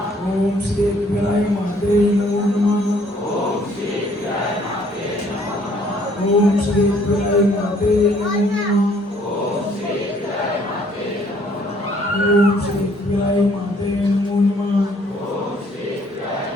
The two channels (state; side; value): normal; both; correlation 0.62